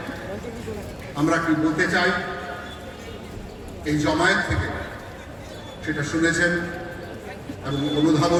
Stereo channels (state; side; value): identical; both; correlation 1.00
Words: আমরা কি বলতে চাই এই জমায়েত থেকে সেটা শুনেছেন এবং